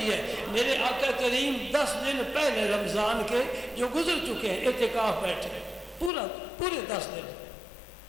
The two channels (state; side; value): drops out; right; at 6.1 s